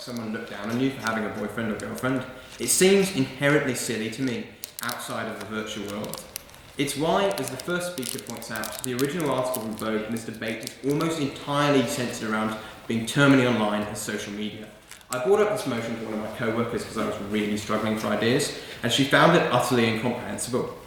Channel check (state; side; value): identical; both; correlation 1.00